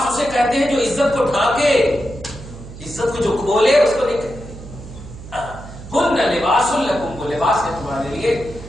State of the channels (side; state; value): right; noise; hum, 14 dB below the sound